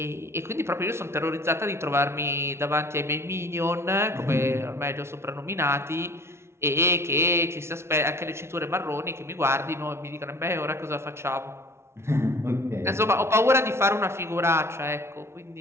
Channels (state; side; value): late; left; 0.13 ms